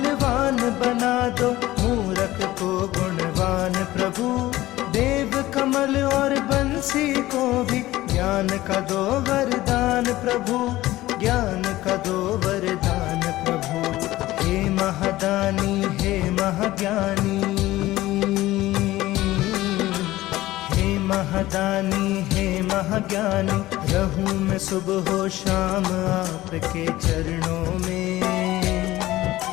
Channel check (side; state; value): right; quieter; 16.7 dB